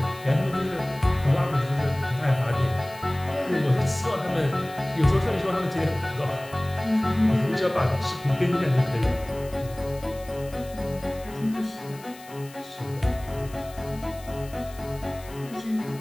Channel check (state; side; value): noise; left; hiss, 21 dB below the sound